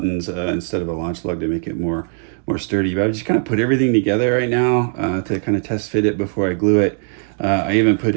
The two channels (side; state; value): left; silent; 59 dB below the other